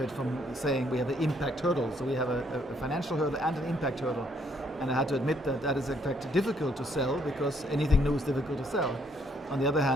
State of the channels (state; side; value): normal; both; correlation 0.69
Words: from saying we have an impact hurdle. So we have a financial hurdle and an impact hurdle. And I had to admit that that is in fact difficult to sell, because anything new is difficult to sell. On the other